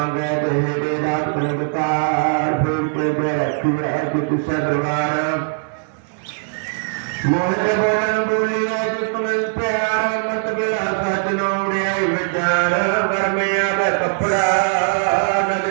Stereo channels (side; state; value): left; silent; 61 dB below the other